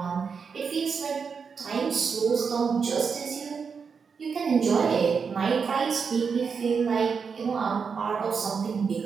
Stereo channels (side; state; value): left; quieter; 5.8 dB